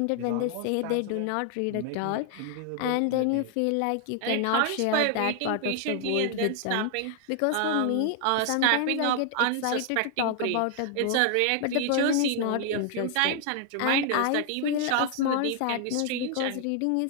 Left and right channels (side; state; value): both; different; correlation 0.00